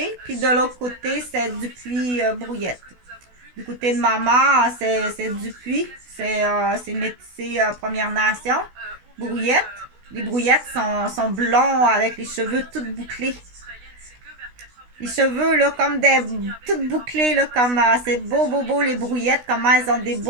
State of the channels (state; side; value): late; left; 16 ms